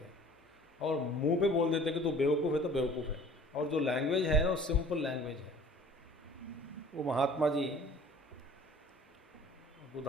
और मुंह पे बोल देते कि तू बेवकूफ़ है तो बेवकूफ़ है, और जो लैंग्वेज है वो सिंपल लैंग्वेज है। वो महात्मा जी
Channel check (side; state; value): both; normal; correlation 0.48